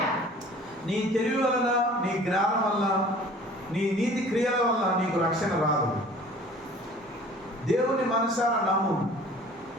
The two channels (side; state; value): both; normal; correlation 0.48